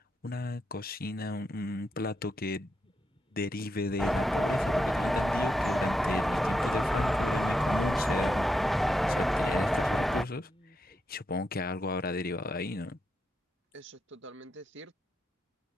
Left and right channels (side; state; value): both; normal; correlation 0.84